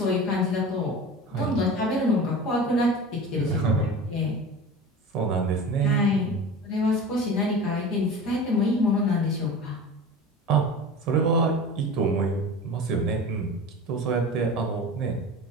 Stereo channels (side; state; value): both; normal; correlation 0.34